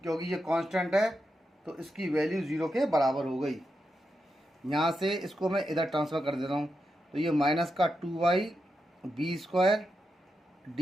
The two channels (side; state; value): both; normal; correlation 0.87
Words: क्योंकि ये कांस्टेंट है तो इसकी वैल्यू 0 के बराबर हो गई। यहाँ से इसको मैं इधर ट्रांसफ़र कर देता हूँ, तो ये माइनस का 2y b square